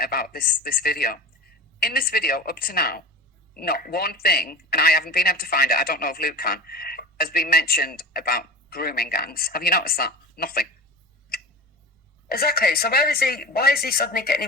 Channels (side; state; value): both; normal; correlation 0.31